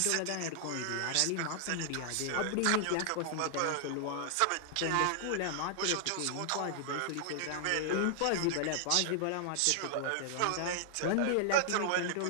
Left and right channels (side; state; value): both; different; correlation 0.00